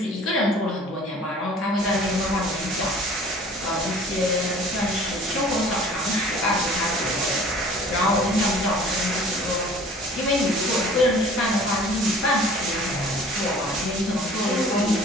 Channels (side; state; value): both; normal; correlation 0.48